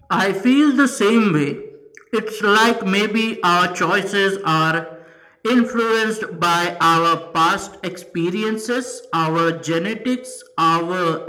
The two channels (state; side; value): identical; both; correlation 1.00